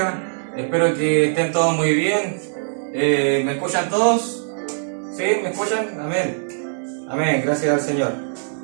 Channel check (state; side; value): silent; left; 65 dB below the other